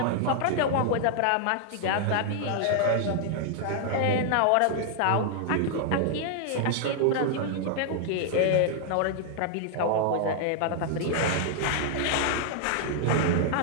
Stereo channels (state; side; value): different; both; correlation 0.00